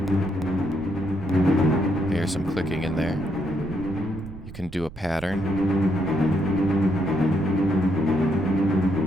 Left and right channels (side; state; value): right; noise; rumble, 15 dB below the sound